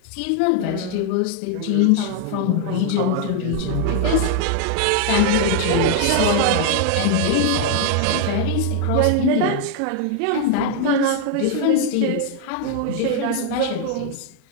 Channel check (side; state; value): both; different; correlation 0.00